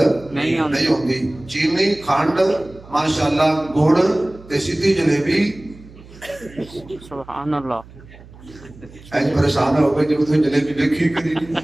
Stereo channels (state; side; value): noise; right; hum, 21 dB below the sound